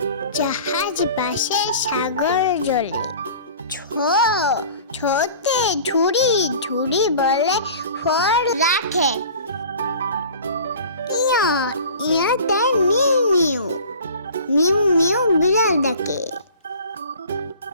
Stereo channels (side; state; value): both; inverted; correlation -0.43